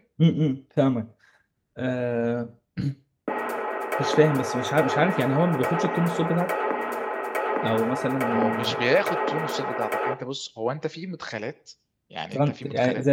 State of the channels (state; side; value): identical; both; correlation 1.00